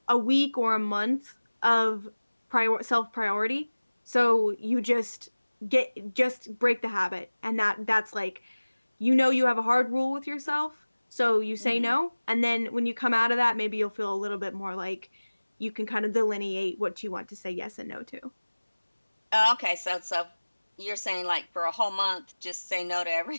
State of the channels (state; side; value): inverted; both; correlation -1.00